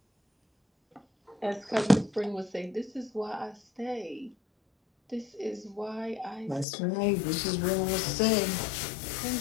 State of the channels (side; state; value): right; drops out; at 6.7 s